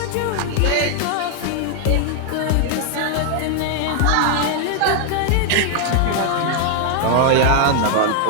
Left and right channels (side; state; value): both; different; correlation 0.00